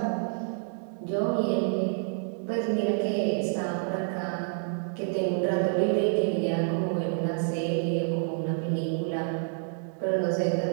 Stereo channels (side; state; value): left; silent; 59 dB below the other